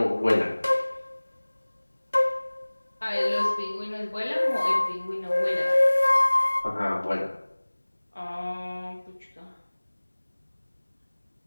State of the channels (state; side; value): inverted; both; correlation -1.00